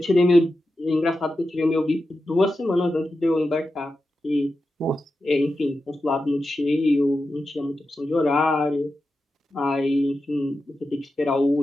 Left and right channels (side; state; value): both; normal; correlation 0.90